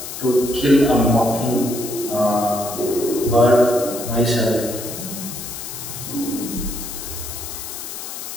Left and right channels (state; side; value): noise; left; hiss, 9 dB below the sound